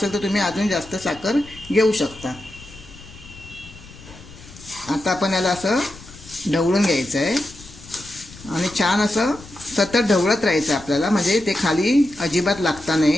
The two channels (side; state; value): left; noise; rumble, 19 dB below the sound